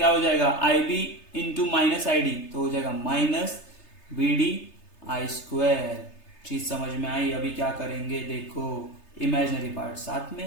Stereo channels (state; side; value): late; right; 3.3 ms